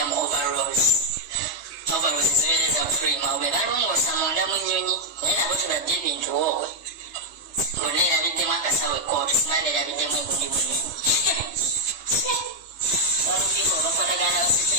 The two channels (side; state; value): right; late; 3.3 ms